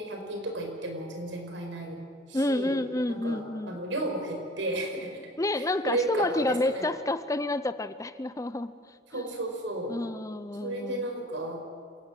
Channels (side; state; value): both; normal; correlation 0.45